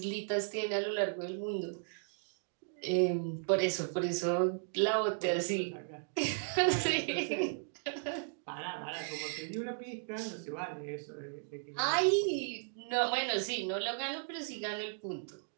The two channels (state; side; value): silent; left; digital silence